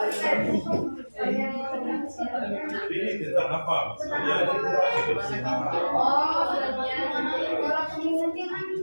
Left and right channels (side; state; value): both; inverted; correlation -1.00